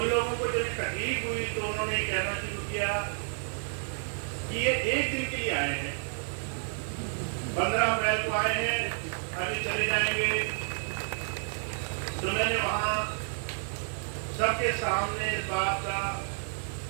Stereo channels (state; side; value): silent; left; 58 dB below the other